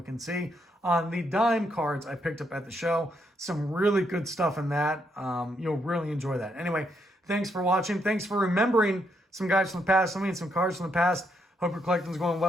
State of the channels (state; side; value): normal; both; correlation 0.77